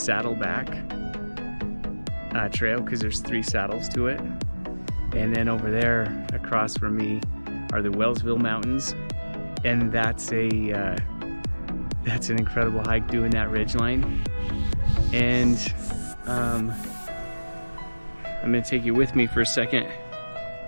trail because there's 3 saddles to it. And then over there across from me are the Wellsville Mountains, and that's an incredible hike doing that ridgeline. And I'm gonna take you with me for a second.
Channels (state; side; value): inverted; both; correlation -1.00